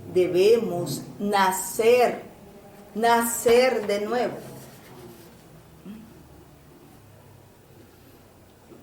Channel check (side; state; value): both; identical; correlation 1.00